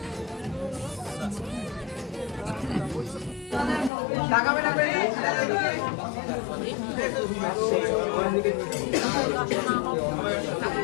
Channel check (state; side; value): drops out; right; at 3.9 s